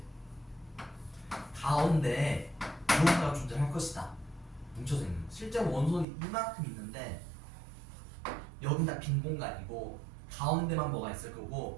가운데 무언가가 존재할 것이다. 뭉쳐져 있는. 실제로 원소는 이만큼 있는데 여긴 다 빈 공간이고 가운데만 뭐가 있을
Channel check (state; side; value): drops out; left; at 6.1 s